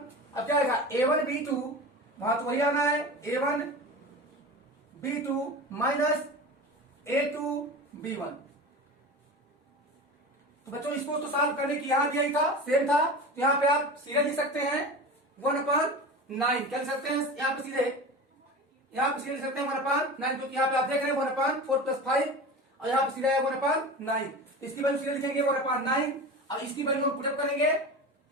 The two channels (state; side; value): normal; both; correlation 0.31